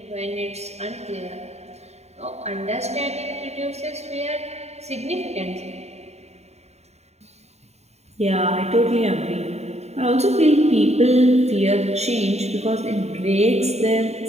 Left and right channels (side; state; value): left; late; 0.32 ms